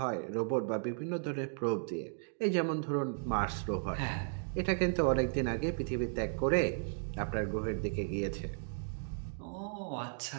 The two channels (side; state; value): left; silent; digital silence